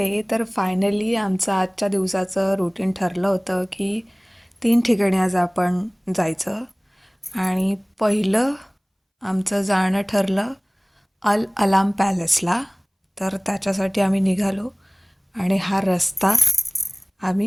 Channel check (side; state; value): both; identical; correlation 1.00